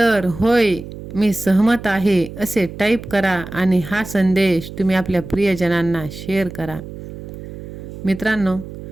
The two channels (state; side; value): noise; right; hum, 12 dB below the sound